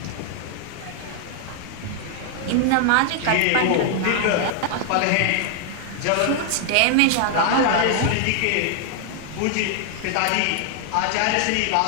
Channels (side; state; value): both; different; correlation 0.00